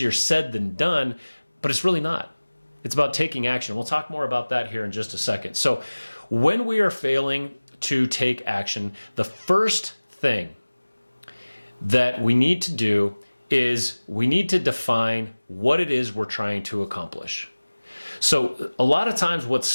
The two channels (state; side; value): inverted; both; correlation -1.00